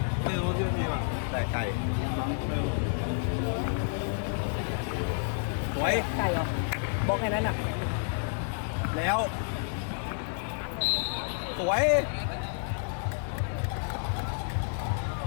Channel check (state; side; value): silent; right; 58 dB below the other